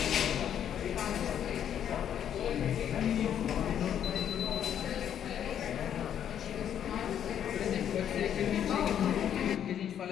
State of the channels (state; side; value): quieter; right; 9.6 dB